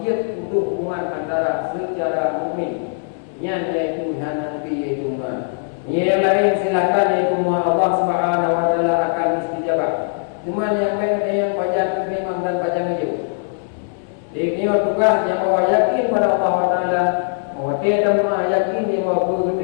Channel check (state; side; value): silent; right; digital silence